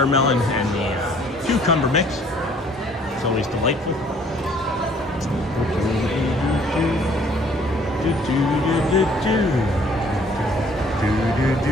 and the cucumber mix. It's always delightful.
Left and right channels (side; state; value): both; normal; correlation 0.58